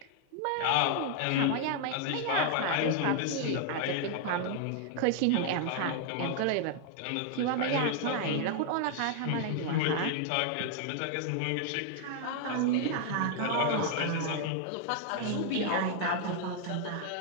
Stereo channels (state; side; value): different; both; correlation 0.00